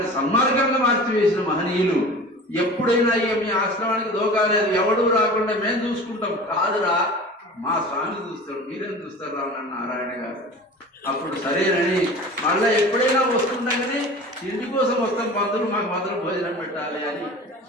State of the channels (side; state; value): both; normal; correlation 0.38